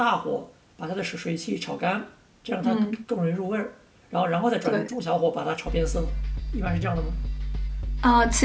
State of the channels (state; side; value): identical; both; correlation 1.00